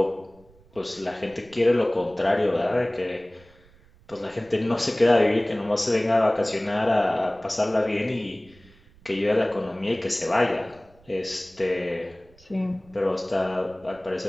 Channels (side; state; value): right; noise; rumble, 27 dB below the sound